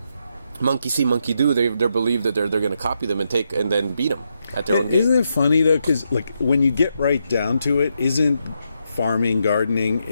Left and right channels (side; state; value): both; inverted; correlation -0.82